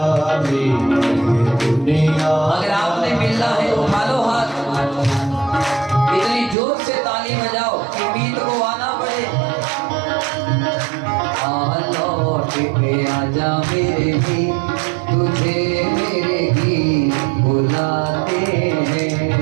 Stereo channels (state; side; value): drops out; left; at 6.6 s